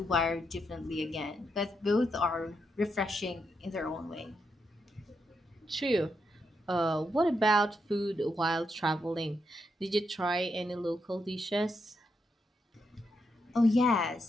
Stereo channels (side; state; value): both; normal; correlation 0.82